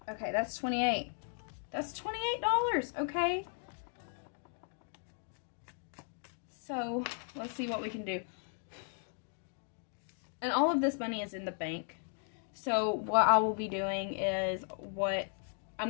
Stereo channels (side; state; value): right; silent; 54 dB below the other